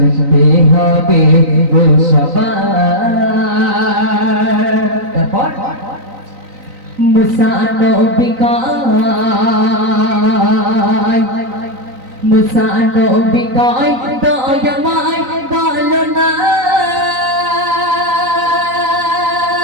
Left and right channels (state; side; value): late; left; 3.9 ms